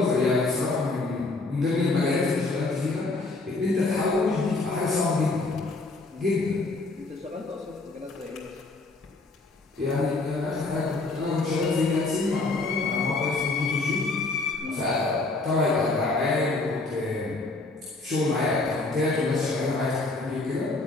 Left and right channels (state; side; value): quieter; right; 3.3 dB